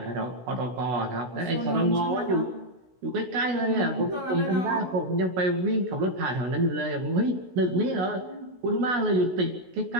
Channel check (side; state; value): left; late; 16 ms